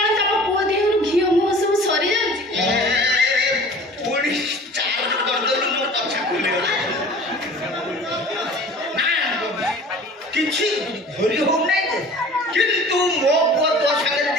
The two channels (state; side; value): normal; both; correlation 0.44